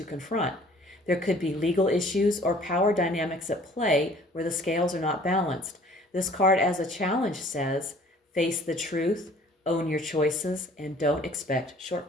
confront. There could be legal issues or power dynamics at play where the scales are not balanced. This card as a challenge says, face the truth, own your choices, and don't expect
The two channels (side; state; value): both; normal; correlation 0.53